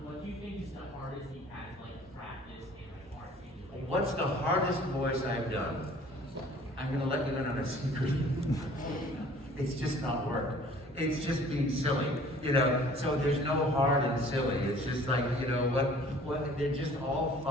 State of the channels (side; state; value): both; normal; correlation 0.51